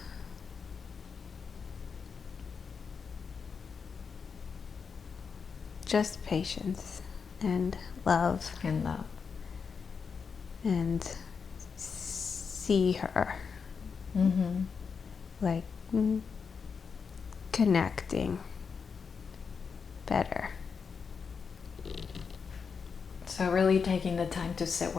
patience and love And love. and see her like connecting better. So really taking the time to sit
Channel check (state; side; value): quieter; right; 5.8 dB